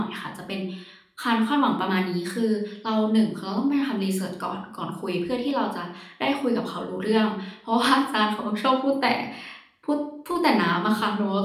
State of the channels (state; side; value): identical; both; correlation 1.00